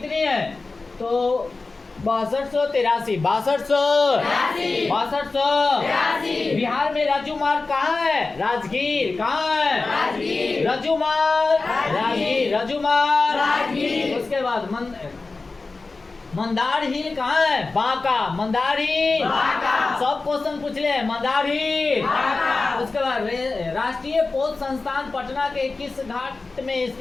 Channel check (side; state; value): right; quieter; 3.7 dB